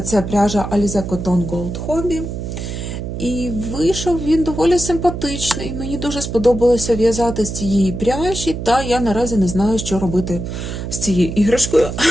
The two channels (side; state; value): right; noise; hum, 6 dB below the sound